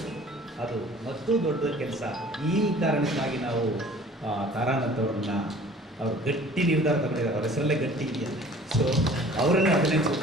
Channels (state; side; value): normal; both; correlation 0.49